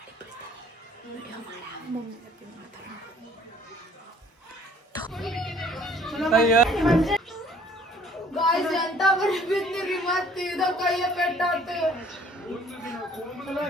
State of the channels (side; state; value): both; normal; correlation 0.56